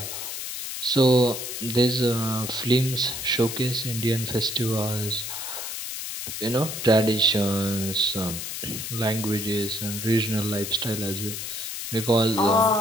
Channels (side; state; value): left; noise; hiss, 6 dB below the sound